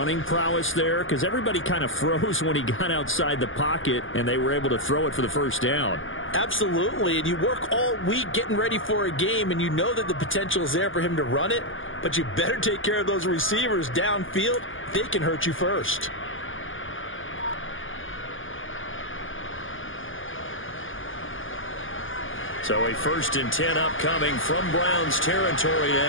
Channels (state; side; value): late; right; 0.58 ms